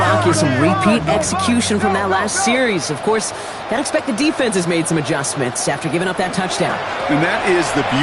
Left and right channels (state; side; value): identical; both; correlation 1.00